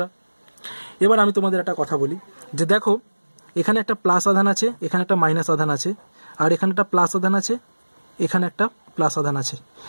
এবার আমি তোমাদের একটা কথা বলি যে দেখো, এখানে একটা প্লাস আধান আছে, এখানে একটা মাইনাস আধান আছে, আর এখানে একটা প্লাস আধান আছে, এখানে একটা প্লাস আধান আছে।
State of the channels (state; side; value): inverted; both; correlation -1.00